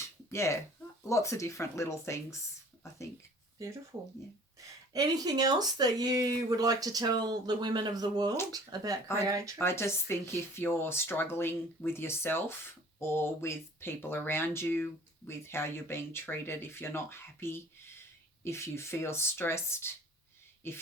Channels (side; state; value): both; normal; correlation 0.49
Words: lots of different little things, I think. Beautiful. Yeah. Anything else that you would like to tell the women of the world about Creatrix? I just think if you're struggling with yourself or with people around you, with how you're being treated, if you're not happy, if you feel stressed, if